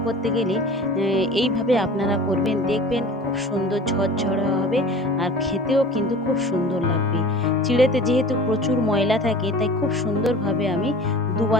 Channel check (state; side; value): normal; both; correlation 0.41